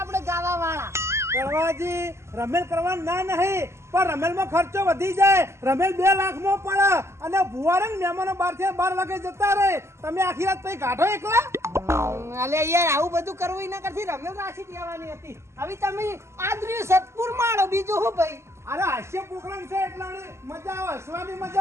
ગાવા વાળા કરવાજી રમેલ કરવા ના નહીં પણ રમેલમાં ખર્ચો વધી જાય રમેલ 2 લાખમાં પડે અને ભુવારંગ મહેમાનો 12 વાગે જતા રહે તમે આખી રાત પછી કાઢો એકલા અલે યાર આવું બધું કરવું એના કરતી રમેલ રાશિ દેવાની હતી હવે તમે આદરી સતપુર માળો બીજું હું ભાઈ અરે હાસ્ય પ્રોગ્રામ છે એટલે મજા આવે હસવાની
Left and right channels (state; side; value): late; left; 0.13 ms